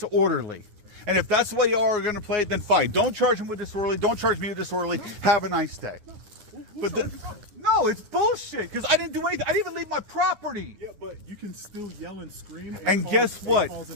And if that's the way y'all are going to play it, then fine. Don't charge him with disorderly. Don't charge me with disorderly. Have a nice day. But no, it's bullshit, because I didn't do anything. I didn't even leave my property. Yeah, but you can still yell and scream. And guess what?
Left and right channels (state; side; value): late; left; 10 ms